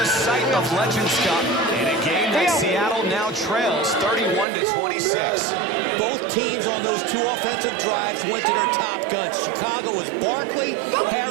site of Legends Cup, in a game that Seattle now trails 31-26. Both teams on those 2 offensive drives went to their top guns. Chicago was Barkley,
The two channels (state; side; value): drops out; left; at 4.5 s